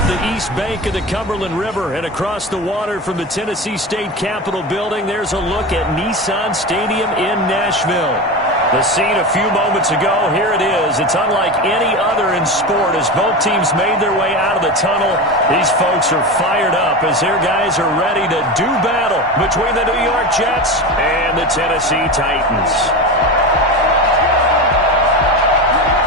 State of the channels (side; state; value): both; normal; correlation 0.23